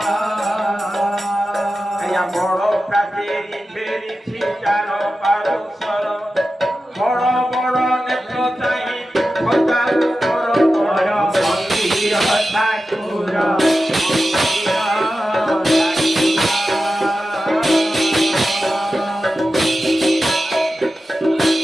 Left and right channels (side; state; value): both; normal; correlation 0.93